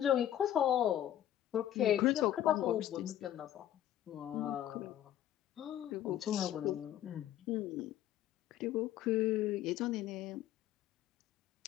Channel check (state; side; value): quieter; right; 11.8 dB